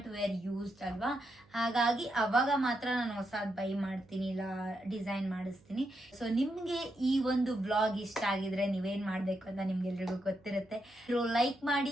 ವೇರ್ ಯೂಸ್ಡ್ ಅಲ್ವಾ, ಹಾಗಾಗಿ ಅವಾಗ ಮಾತ್ರ ನಾನು ಹೊಸದು ಬೈ ಮಾಡ್ತೀನಿ, ಇಲ್ಲ ಡಿಸೈನ್ ಮಾಡಿಸ್ತೀನಿ. ಸೊ ನಿಮ್ಗೆ ಈ ಒಂದು ವ್ಲಾಗ್ ಇಷ್ಟ ಆಗಿದ್ರೆ ನೀವೇನ್ ಮಾಡ್ಬೇಕು ಅಂತ ನಿಮ್ಗೆಲ್ರಿಗೂ ಗೊತ್ತಿರುತ್ತೆ. ಲೈಕ್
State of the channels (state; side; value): noise; right; hum, 29 dB below the sound